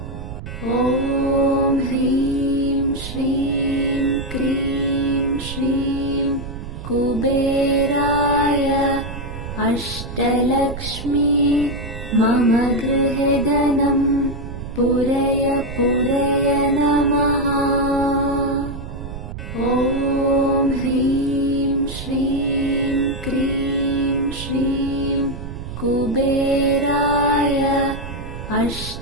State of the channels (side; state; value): right; noise; rumble, 9 dB below the sound